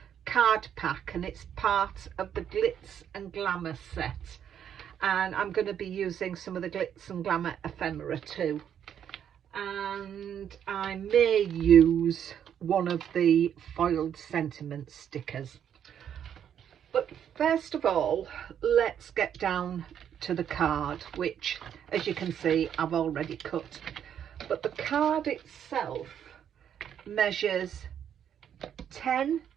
card pack, and it's part of the Glitz and Glamour set, and I'm going to be using some of the Glitz and Glamour Ephemera too, and I may use one of the foiled sentiment stickers. But first of all, let's get down to the card, which, as you can see, I've already cut. But the card itself measures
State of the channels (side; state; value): left; quieter; 9.1 dB